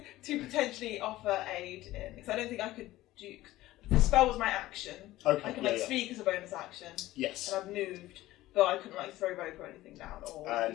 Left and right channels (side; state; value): right; quieter; 16.5 dB